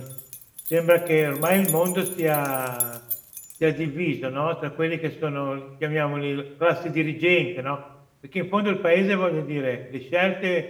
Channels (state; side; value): identical; both; correlation 1.00